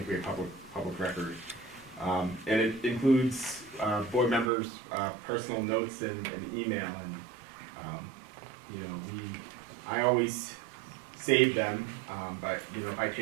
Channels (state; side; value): drops out; left; at 4.5 s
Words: a public record. And it includes board members' personal notes and email. And I always save them, but if I